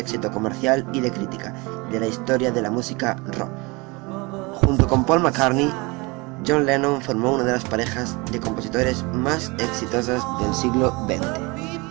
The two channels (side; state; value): left; quieter; 26.2 dB